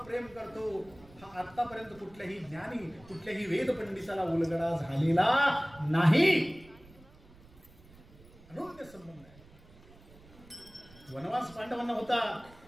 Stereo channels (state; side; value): noise; right; rumble, 23 dB below the sound